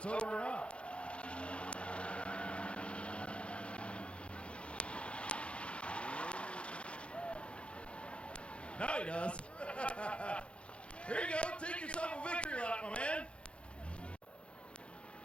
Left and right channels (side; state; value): right; late; 0.059 ms